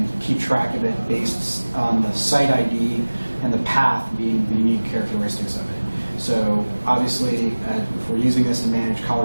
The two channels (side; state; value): both; inverted; correlation -1.00